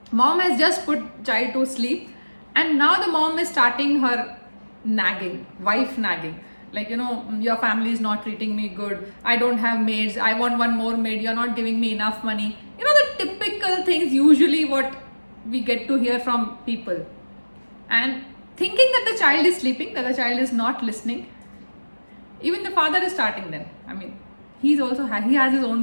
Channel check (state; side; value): inverted; both; correlation -1.00